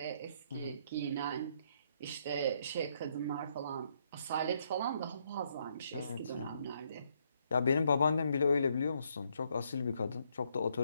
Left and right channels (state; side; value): inverted; both; correlation -0.73